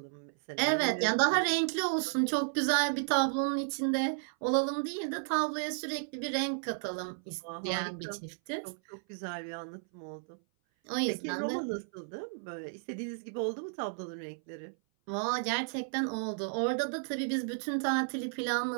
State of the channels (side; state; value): left; silent; 56 dB below the other